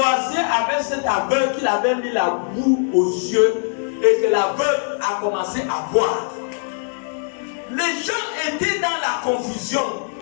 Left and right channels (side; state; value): right; silent; digital silence